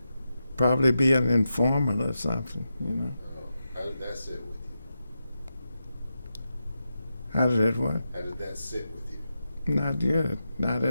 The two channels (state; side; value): inverted; both; correlation -0.89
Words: probably be an informant or something, How did that sit with you? How did it what? How did that sit with you? Not good. Not